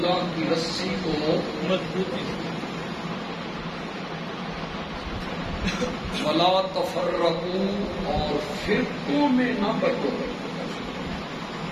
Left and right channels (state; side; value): identical; both; correlation 1.00